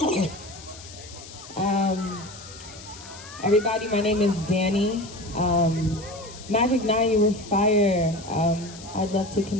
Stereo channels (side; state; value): left; noise; hiss, 16 dB below the sound